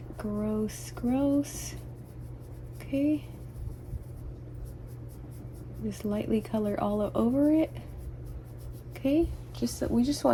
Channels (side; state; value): both; identical; correlation 1.00